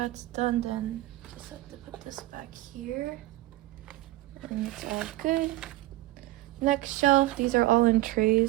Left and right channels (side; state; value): left; quieter; 17.8 dB